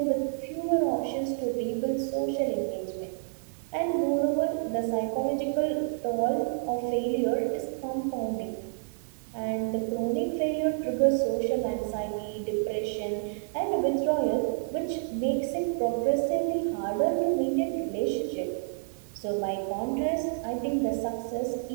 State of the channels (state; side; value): silent; left; digital silence